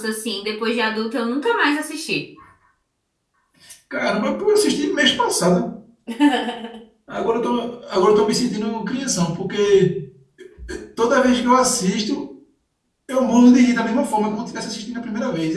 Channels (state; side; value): identical; both; correlation 1.00